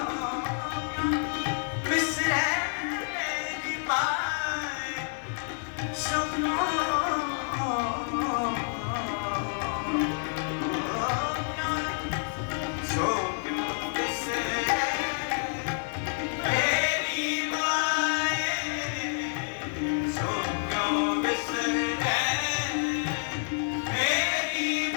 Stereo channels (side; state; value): right; silent; digital silence